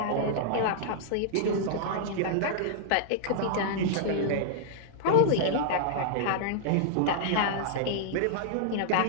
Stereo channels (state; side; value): different; both; correlation -0.01